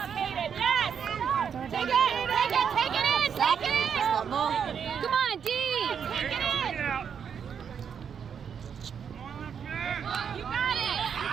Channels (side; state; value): left; quieter; 7.4 dB